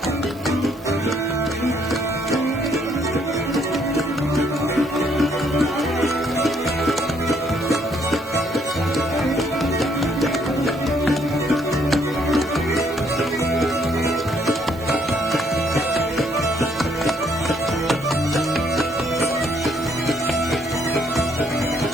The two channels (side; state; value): both; normal; correlation 0.69